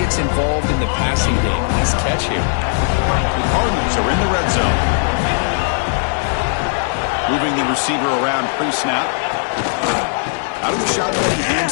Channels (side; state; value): right; silent; 68 dB below the other